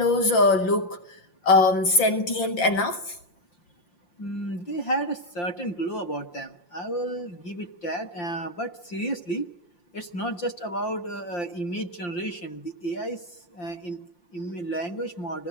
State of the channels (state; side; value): late; right; 5.7 ms